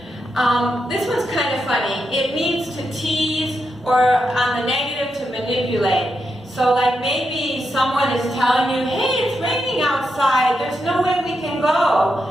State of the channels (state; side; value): normal; both; correlation 0.85